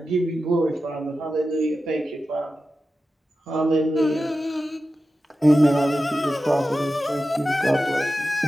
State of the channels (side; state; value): both; normal; correlation 0.93